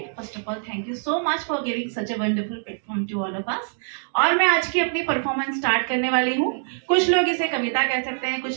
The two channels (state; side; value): silent; left; digital silence